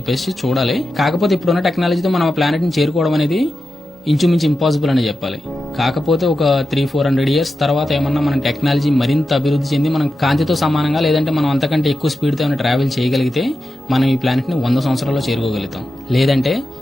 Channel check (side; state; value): both; normal; correlation 0.90